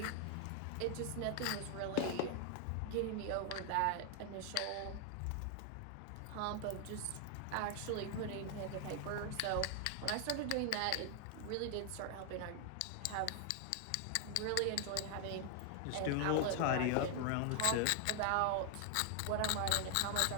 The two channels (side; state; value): both; different; correlation 0.00